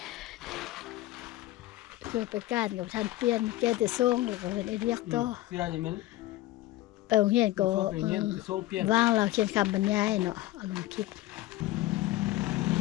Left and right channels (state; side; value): quieter; right; 16.4 dB